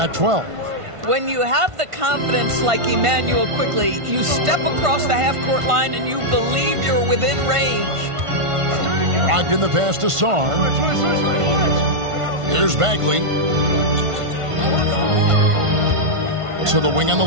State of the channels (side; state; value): left; late; 1.5 ms